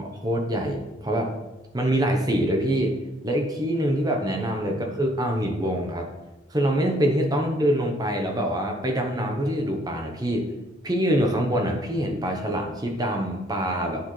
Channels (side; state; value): both; normal; correlation 0.64